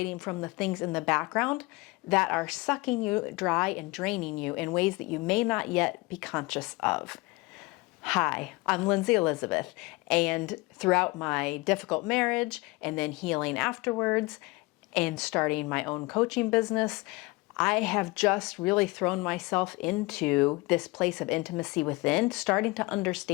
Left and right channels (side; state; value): right; quieter; 23.4 dB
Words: from the things in the background that are sucking you dry and draining you in ways that you may not yet be conscious of. Hi, I'm Linzy Elizabeth, and throughout my difficult marriage and then healing afterwards and starting my own coaching business, I have just really thrown myself into this place of intimacy within, starting to